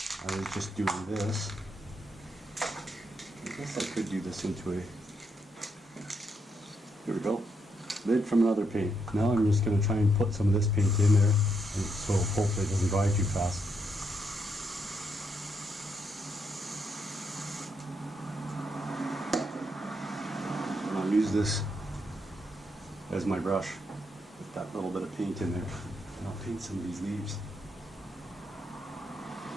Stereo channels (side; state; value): both; normal; correlation 0.79